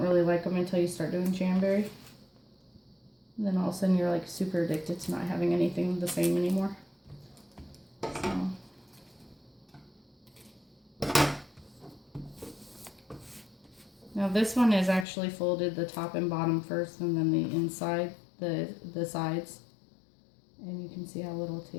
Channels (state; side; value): drops out; right; at 15.1 s